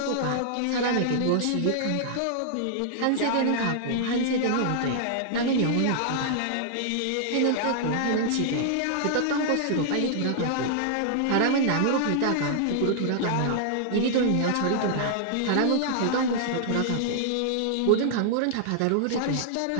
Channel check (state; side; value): different; both; correlation -0.01